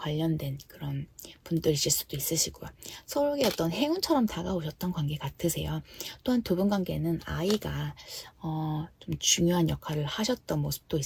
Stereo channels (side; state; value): both; identical; correlation 1.00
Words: 그런 분들이실 수도 있으시고요. 서로에게 어떤 행운처럼 다가오셨던 관계 같으세요. 또한 두 분 관계는 아이가 좀 중요한 역할을 하셨던 모습도